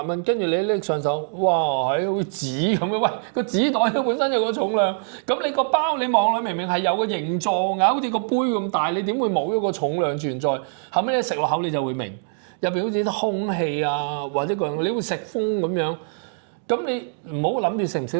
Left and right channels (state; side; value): silent; left; digital silence